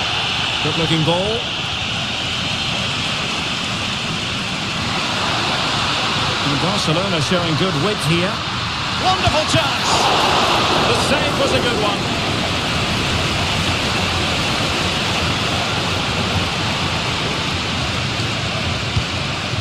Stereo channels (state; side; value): identical; both; correlation 1.00